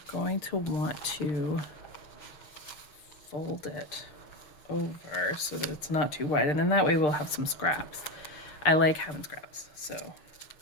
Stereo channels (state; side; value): late; right; 6.7 ms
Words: going to want to fold it over so that it's not too wide. And then that way we'll have some scraps. I like having scraps, so.